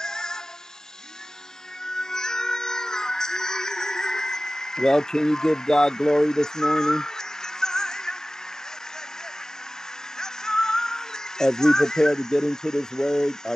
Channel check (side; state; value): both; normal; correlation 0.97